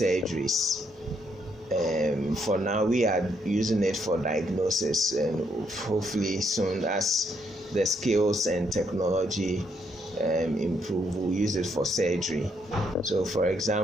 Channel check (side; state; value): both; normal; correlation 0.74